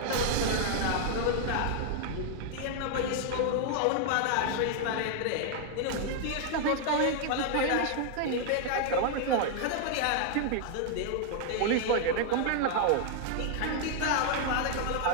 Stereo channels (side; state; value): both; different; correlation 0.00